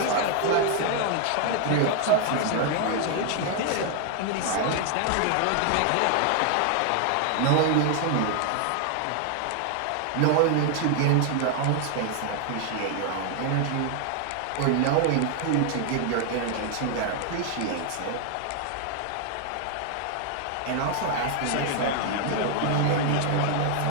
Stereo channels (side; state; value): both; different; correlation 0.00